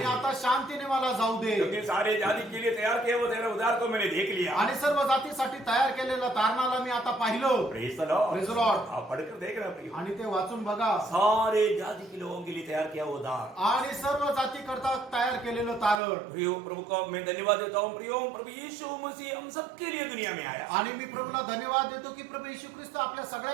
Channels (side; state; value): left; drops out; at 16.0 s